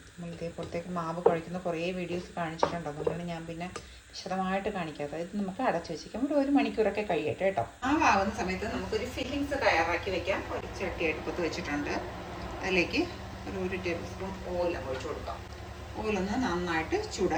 നമ്മളിതേപോലത്തേക്ക് മാവ് കുഴയ്ക്കുന്ന കുറേ വീഡിയോസ് കാണിച്ചിട്ടുണ്ട്, അതുകൊണ്ടാണ് ഞാൻ പിന്നെ വിശദമായിട്ട് കാണിക്കാത്തത്. ഇത് നമുക്ക് അടച്ചു വെച്ചിരിക്കാം, ഒരു 1 മണിക്കൂറൊക്കെ കഴിയട്ടെ കേട്ടോ. മാവാകുന്ന സമയത്ത് നമുക്കൊരു ഫില്ലിങ്സ് തയ്യാറാക്കി വെക്കാം. ഒരു ചട്ടി അടുപ്പത്ത് വെച്ചിട്ടുണ്ട്. അതിലേക്ക് ഒരു 1 ടേബിൾ സ്പൂൺ ഓയിൽ ഒഴിച്ച് കൊടുക്കാം. ഓയിലൊന്ന് നന്നായിട്ട്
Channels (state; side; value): identical; both; correlation 1.00